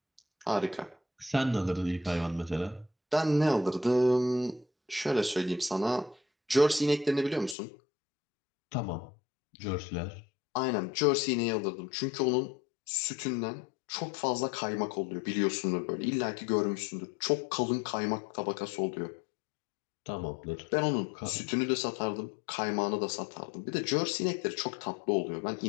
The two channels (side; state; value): right; drops out; at 7.6 s